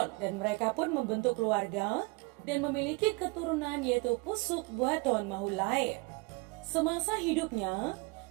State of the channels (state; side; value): quieter; left; 27.8 dB